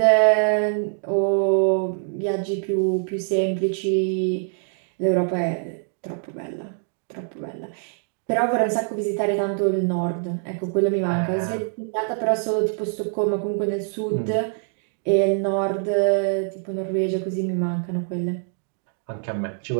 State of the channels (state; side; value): silent; left; 63 dB below the other